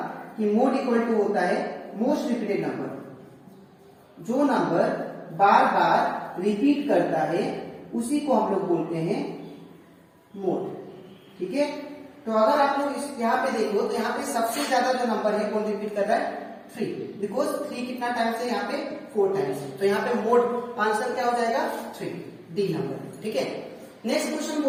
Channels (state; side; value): identical; both; correlation 1.00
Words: कि मोड इक्वल टू होता है मोस्ट रिपीटेड नंबर। जो नंबर बार बार रिपीट करता है उसी को हम लोग बोलते हैं मोड, ठीक है। तो अगर आप लोग इस यहाँ पे देखो तो यहाँ पे सबसे ज्यादा जो नंबर है कौन रिपीट कर रहा है, 3, बिकॉज 3 कितना टाइम्स है यहाँ पे 4 टाइम्स। तो यहाँ पे मोड आंसर क्या हो जाएगा 3, डी नंबर, ठीक है। नेक्स्ट क्वेश्चन